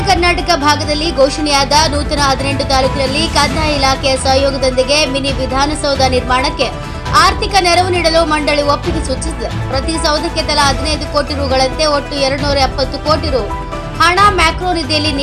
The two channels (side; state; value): both; identical; correlation 1.00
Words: ಕರ್ನಾಟಕ ಭಾಗದಲ್ಲಿ ಘೋಷಣೆಯಾದ ನೂತನ 18 ತಾಲೂಕಿನಲ್ಲಿ ಕಂದಾಯ ಇಲಾಖೆಯ ಸಹಯೋಗದೊಂದಿಗೆ ಮಿನಿ ವಿಧಾನಸೌಧ ನಿರ್ಮಾಣಕ್ಕೆ ಆರ್ಥಿಕ ನೆರವು ನೀಡಲು ಮಂಡಳಿ ಒಪ್ಪಿಗೆ ಸೂಚಿಸಿದೆ. ಪ್ರತಿ ಸೌಧಕ್ಕೆ ತಲಾ 15 ಕೋಟಿ ರುಗಳಂತೆ ಒಟ್ಟು 270 ಕೋಟಿ ರು ಹಣ ಮ್ಯಾಕ್ರೋ ನಿಧಿಯಲ್ಲಿ